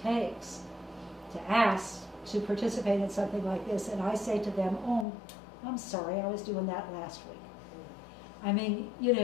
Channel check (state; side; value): drops out; right; at 5.1 s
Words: to ask to participate in something like this, and I say to them, oh, I'm sorry, I was doing that last week. I mean,